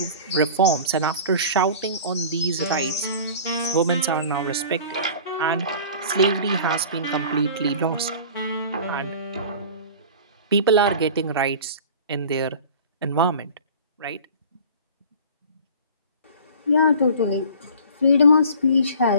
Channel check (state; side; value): inverted; both; correlation -0.41